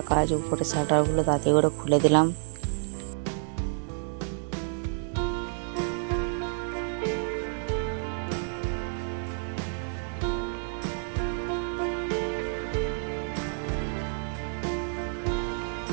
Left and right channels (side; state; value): left; silent; 56 dB below the other